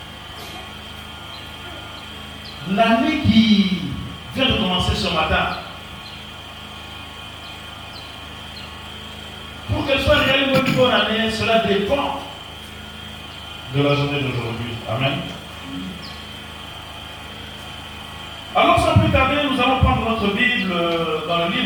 L'année qui vient de commencer ce matin, pour qu'elle soit réellement une bonne année, cela dépend de la journée d'aujourd'hui. Amen. Alors sans plus tarder, nous allons prendre notre Bible dans le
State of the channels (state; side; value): identical; both; correlation 1.00